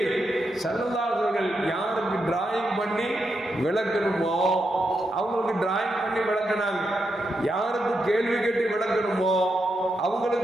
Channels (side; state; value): both; normal; correlation 0.84